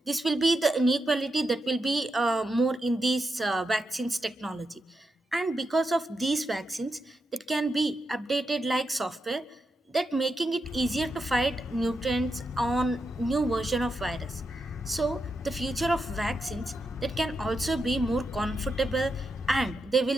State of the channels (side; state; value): both; normal; correlation 0.86